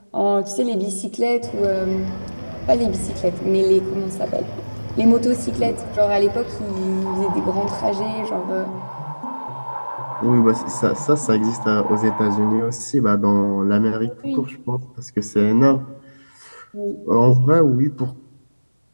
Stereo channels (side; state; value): both; inverted; correlation -1.00